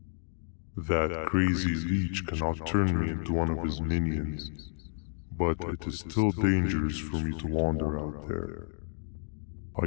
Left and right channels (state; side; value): silent; right; digital silence